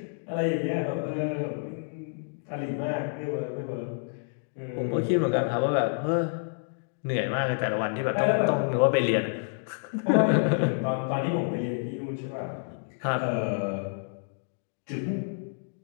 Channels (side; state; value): right; silent; digital silence